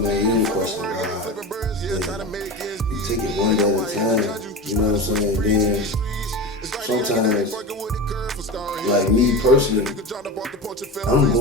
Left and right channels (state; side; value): normal; both; correlation 0.26